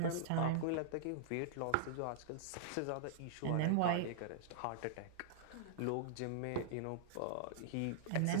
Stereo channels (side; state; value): both; different; correlation -0.01